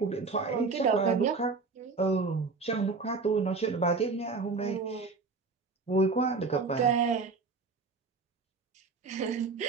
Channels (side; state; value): left; quieter; 4.3 dB